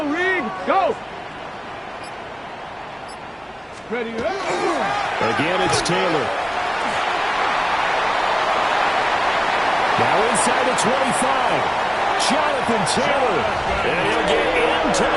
Reed, go. Ready, Again, it's Taylor. Now inside the 25. Jonathan Taylor. And he'll get into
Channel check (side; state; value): both; identical; correlation 1.00